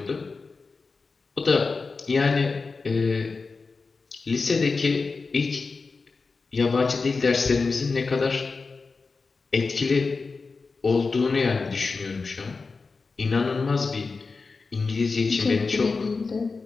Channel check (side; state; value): right; quieter; 4.3 dB